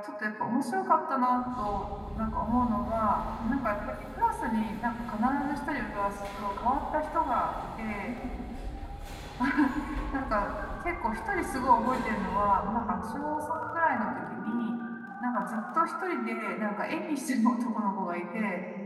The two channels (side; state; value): both; identical; correlation 1.00